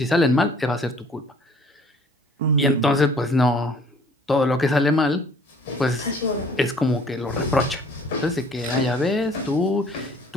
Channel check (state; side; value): normal; both; correlation 0.55